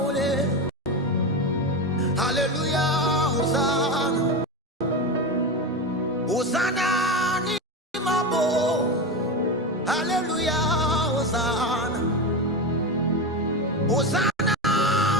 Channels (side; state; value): both; normal; correlation 0.18